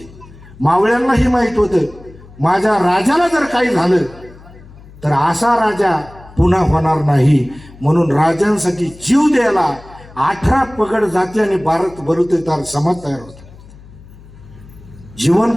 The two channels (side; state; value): left; noise; hum, 21 dB below the sound